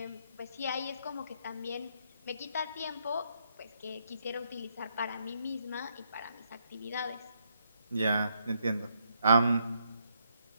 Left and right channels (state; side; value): inverted; both; correlation -0.75